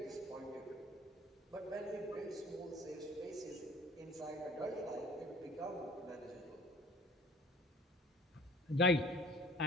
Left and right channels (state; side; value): normal; both; correlation 0.49